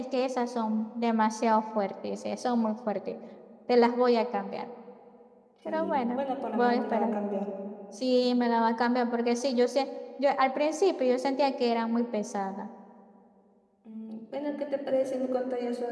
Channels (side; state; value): both; identical; correlation 1.00